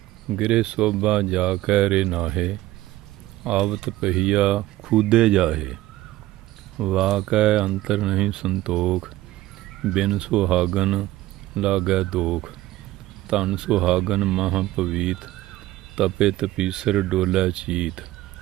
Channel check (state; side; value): quieter; left; 16.6 dB